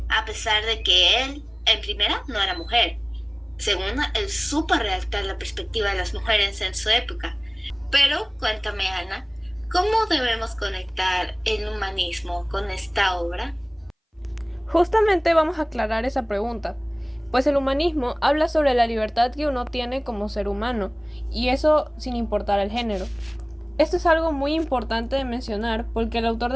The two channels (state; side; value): identical; both; correlation 1.00